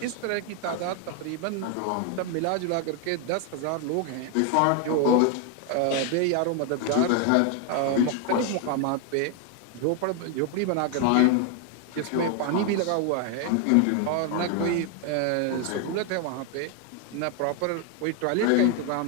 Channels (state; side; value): different; both; correlation 0.00